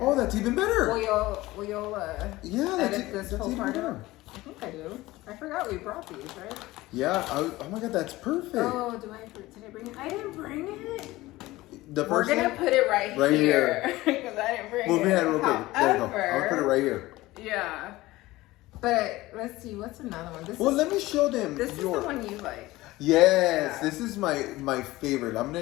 that's even better. Will y'all edit this whole even part better. out? I think I do. I forgot we brought these, right? Yeah. Oh my God, that's perfect. Oh, did I bring it? I didn't bring it. The first We're gonna put it right here because I didn't bring it. Move your head real quick. There you go. I'll put it right here. Yeah. But let's see, what's another one? Let me show them. This is the one you like. Yes, this is my favorite. I'm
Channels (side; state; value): right; quieter; 18.4 dB